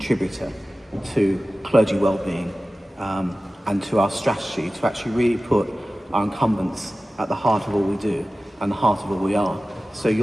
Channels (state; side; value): normal; both; correlation 0.96